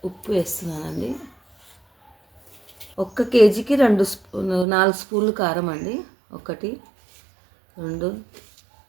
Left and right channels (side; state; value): left; drops out; at 4.7 s